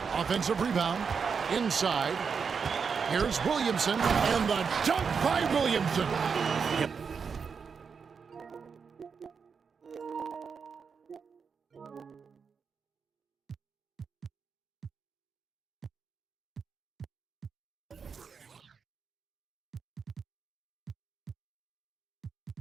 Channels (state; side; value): quieter; left; 5.8 dB